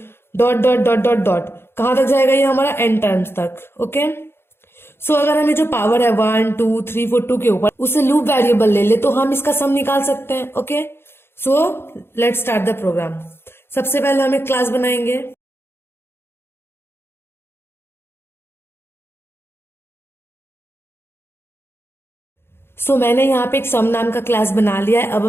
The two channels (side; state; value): right; late; 0.11 ms